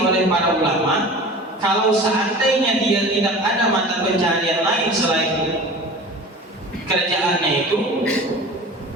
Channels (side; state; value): both; normal; correlation 0.38